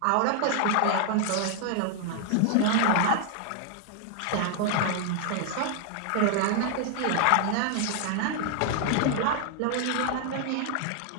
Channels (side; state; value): both; different; correlation 0.00